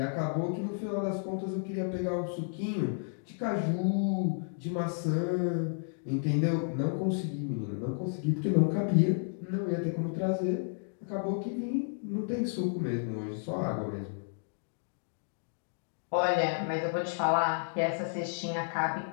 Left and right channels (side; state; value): right; silent; digital silence